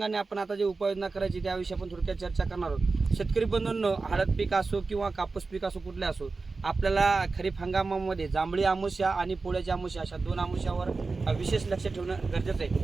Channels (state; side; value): quieter; left; 4.0 dB